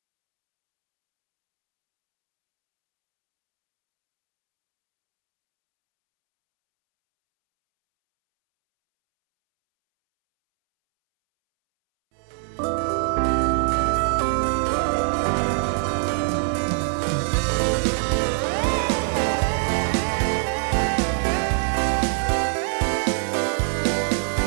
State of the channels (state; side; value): silent; left; 63 dB below the other